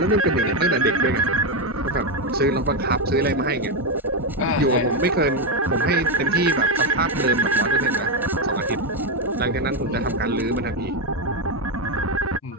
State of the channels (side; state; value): both; normal; correlation 0.07